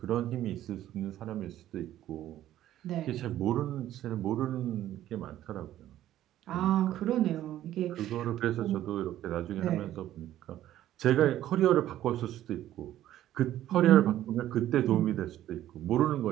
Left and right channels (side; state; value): left; quieter; 12.9 dB